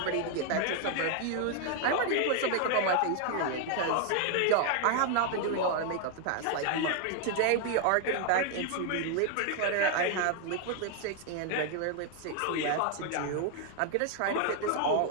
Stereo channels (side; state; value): both; different; correlation 0.00